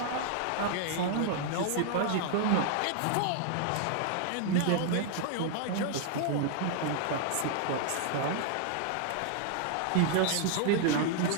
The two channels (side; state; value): both; different; correlation 0.00